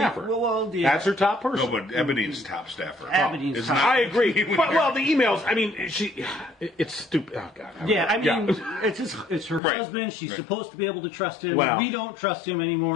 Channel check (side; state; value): right; drops out; at 9.6 s